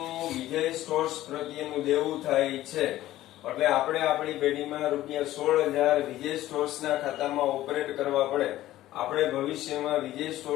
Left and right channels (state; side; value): quieter; right; 14.8 dB